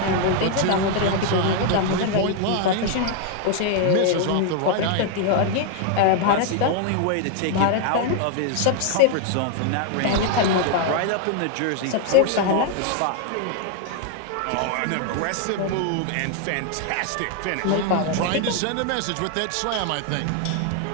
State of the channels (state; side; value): different; both; correlation 0.00